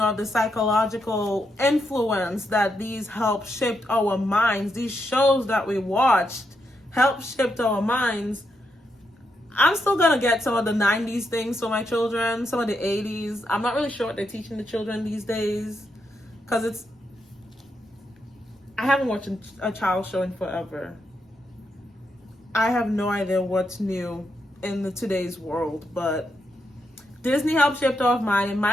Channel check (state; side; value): normal; both; correlation 0.82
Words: the psychological influence that these help shape our minds. These shows that we watched help shape our minds. I'm still going to get some of the 90s things for my children, some of the 80s. I'm not really sure what they're teaching the children these days, because I haven't watched a child show in forever. I have no idea what's new in today's world, but Disney helped shape our mind. In